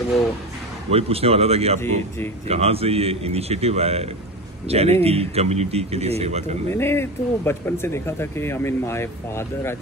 वो वही पूछने वाला था कि आपको जी. कहाँ से ये इनिशिएटिव आया चैरिटी कम्युनिटी के लिए सेवा तो करना. मैंने तो बचपन से देखा था कि I mean my father I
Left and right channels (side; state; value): both; normal; correlation 0.24